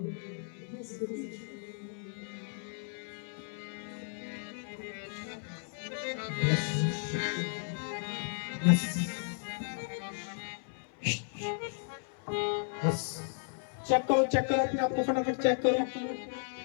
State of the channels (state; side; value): silent; right; 55 dB below the other